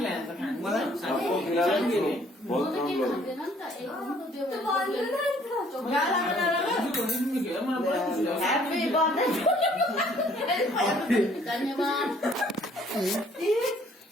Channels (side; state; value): both; normal; correlation 0.60